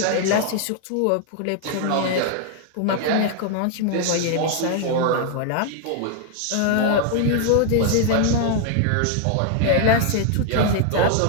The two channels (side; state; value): both; different; correlation 0.00